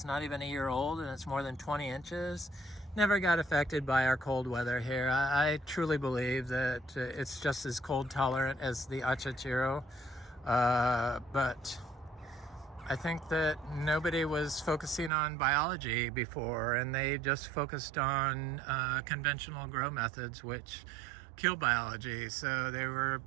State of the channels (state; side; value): drops out; left; at 15.1 s